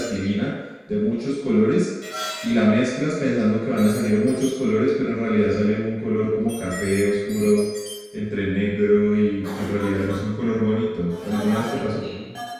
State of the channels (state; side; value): identical; both; correlation 1.00